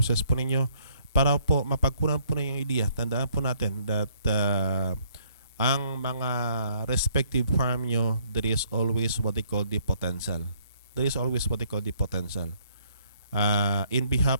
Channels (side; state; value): both; inverted; correlation -0.65